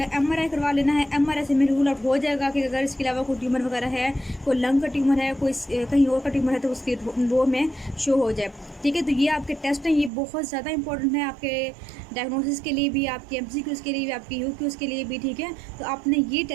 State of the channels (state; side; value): drops out; left; at 10.1 s